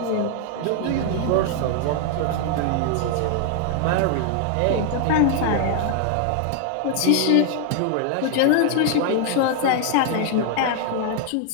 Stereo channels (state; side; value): different; both; correlation 0.00